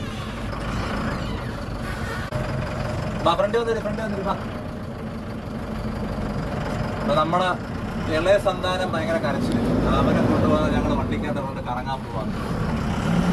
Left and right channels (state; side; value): identical; both; correlation 1.00